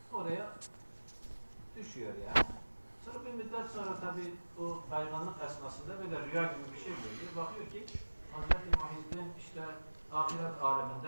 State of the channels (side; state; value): both; inverted; correlation -1.00